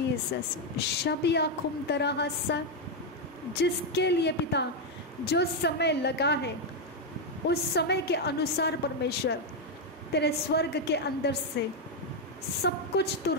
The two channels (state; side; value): normal; both; correlation 0.03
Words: शबिया खुम तरह हस्सा, जिसके लिए पिता जो समय लगा है उस समय के अनुसार परमेश्वर तेरे स्वर्ग के अंदर से सब कुछ तू